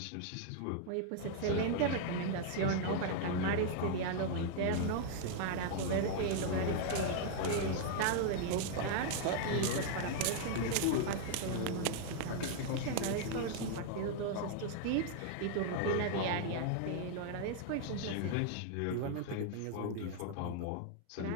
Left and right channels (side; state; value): both; different; correlation 0.00